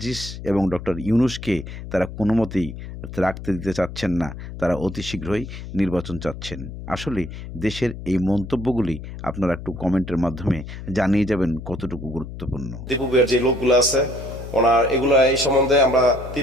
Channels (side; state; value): left; noise; hum, 10 dB below the sound